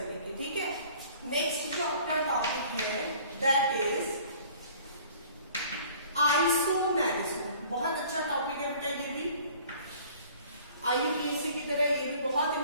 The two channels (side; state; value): both; inverted; correlation -0.51